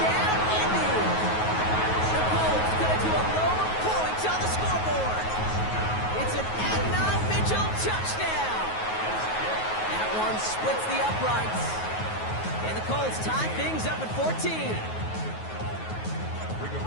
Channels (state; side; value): late; right; 9.4 ms